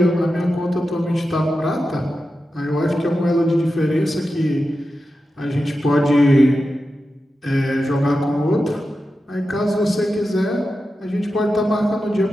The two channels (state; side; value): normal; both; correlation 0.91